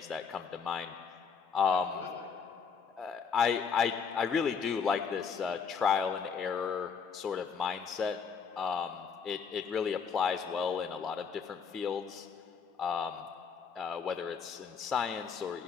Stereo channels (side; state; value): right; quieter; 6.3 dB